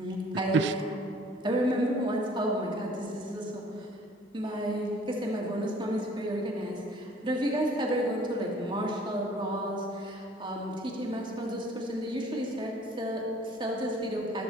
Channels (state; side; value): normal; both; correlation 0.54